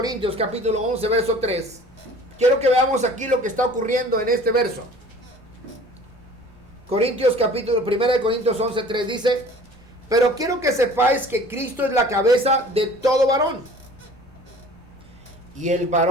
capítulo 11, verso 3, quiero que veamos aquí lo que está ocurriendo en este verso. 1 de Corintios 11, 3 dice: pero quiero que sepáis que Cristo es la cabeza de todo varón, y el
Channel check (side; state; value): both; normal; correlation 0.47